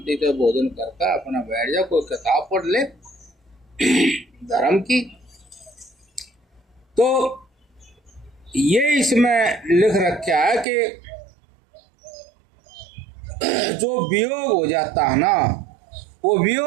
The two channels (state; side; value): drops out; left; at 10.7 s